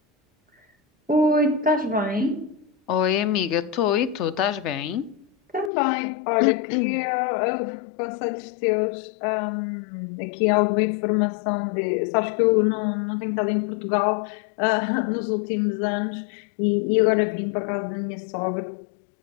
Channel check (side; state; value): right; drops out; at 5.7 s